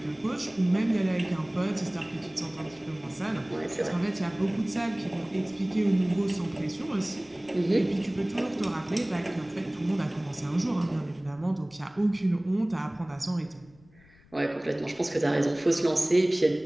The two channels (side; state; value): left; noise; rumble, 27 dB below the sound